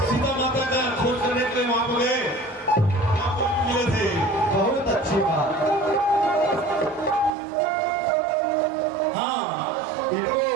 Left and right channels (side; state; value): left; drops out; at 7.3 s